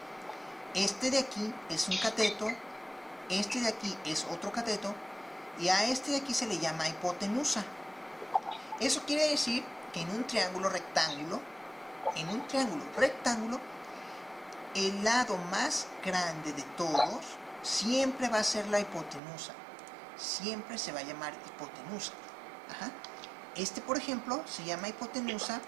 Este de aquí es un cateto, este de aquí es otro cateto, y a este de aquí se le llama hipotenusa. Eso quiere decir que en un triángulo rectángulo, el lado más grande de todos siempre va a ser la hipotenusa. Siempre se va a llamar hipotenusa. Ajá. Este, por ejemplo, se llama hipotenusa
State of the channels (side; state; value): left; drops out; at 19.2 s